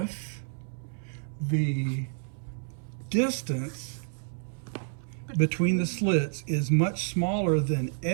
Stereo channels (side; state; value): left; silent; 58 dB below the other